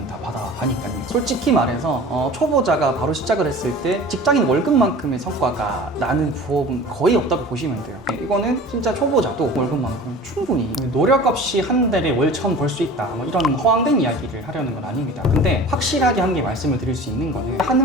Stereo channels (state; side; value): normal; both; correlation 0.40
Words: 다 받아가니까요. 솔직히 말해서 초보자가 바로 시작을 했을 때 직장인 월급만큼의 성과가 나는 부업은 거의 없다고 보시면 돼요. 이거는 진짜 초보자도 월급만큼 충분히 노력 없이 한 달에 월 1,000 벌 수 있다, 뭐 이런 허황된 이야기를 하려는 건 아닙니다. 근데 확실하게 한 개 말씀을 드릴 수 있는 거는